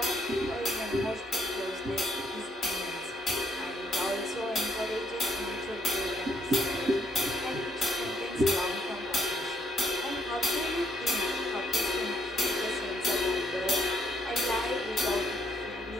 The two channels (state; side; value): normal; both; correlation 0.70